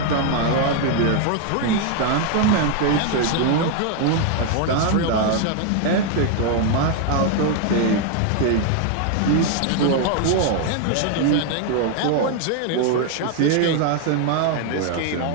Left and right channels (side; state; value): both; different; correlation 0.00